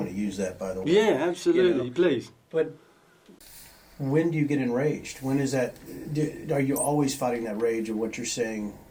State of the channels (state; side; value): identical; both; correlation 1.00